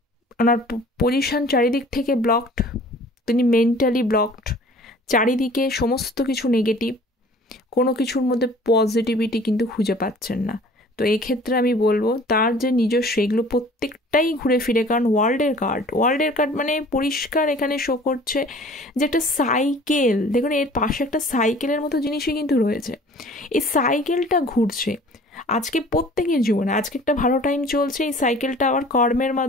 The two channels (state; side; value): normal; both; correlation 0.49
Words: ওনার পজিশন চারিদিক থেকে ব্লকড, তিনি মেন্টালি ব্লকড, চারিদিকে সমস্ত কিছু নেগেটিভ, কোনো কিছুর মধ্যে পজিটিভিটি কিন্তু খুঁজে পাচ্ছেন না। তো এক্ষেত্রে আমি বলবো তার যে নিজস্ব সেগুলো প্রত্যেকটাই ঘুরে ফিরে, কারণ ওয়ার্ল্ডের কার্ড মানে পরিষ্কার এখানে শো করছে যে একটা সাইকেল, দেখুন এর পাশে একটা সাইকেলের মতো জিনিসই কিন্তু রয়েছে, এই সাইকেলটা ঘুরছে। আজকে প্রত্যেকের জীবনে আজকে একটা ভালো টাইম চলছে, এই সাইকেলটা আবার কর্মের